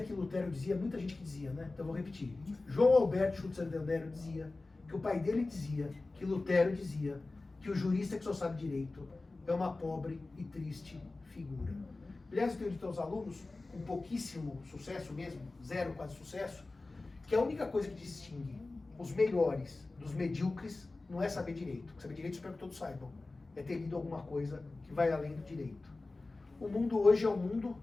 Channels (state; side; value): quieter; right; 3.3 dB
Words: que Lutero dizia, muita gente que dizia, né? Então eu vou repetir. João Alberto Schutzer Del Nero dizia que o pai dele dizia, que Lutero dizia, que o jurista que só sabe direito é uma pobre e triste figura. Aliás, eu tenho dito aos alunos, com pouquíssimo sucesso mesmo, zero quase sucesso, que a única coisa que distingue os melhores dos medíocres não é saber direito. Saber direito, espero que todos saibam. É ter lido alguma coisa que vai além do direito. O mundo hoje é um mundo